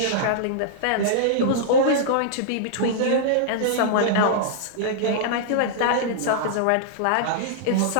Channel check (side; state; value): both; different; correlation -0.02